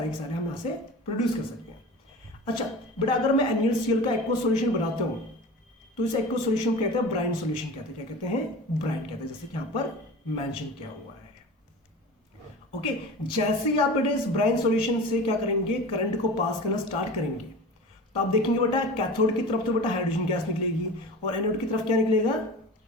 के सारे हम यहाँ से प्रोड्यूस कर सकते हैं। अच्छा बेटा, अगर मैं NaCl का एक्वा सॉल्यूशन बनाता हूँ तो इस एक्वा सॉल्यूशन को कहते हैं ब्राइन सॉल्यूशन, कहते हैं, क्या कहते हैं, ब्राइन कहते हैं, जैसे कि यहाँ पर मेंशन किया हुआ है। ओके, जैसे ही आप बेटा इस ब्राइन सॉल्यूशन से क्या करेंगे, करंट को पास करना स्टार्ट करेंगे तो आप देखेंगे बेटा कैथोड की तरफ तो बेटा हाइड्रोजन गैस निकलेगी और एनोड की तरफ क्या निकलेगा,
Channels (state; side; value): normal; both; correlation 0.34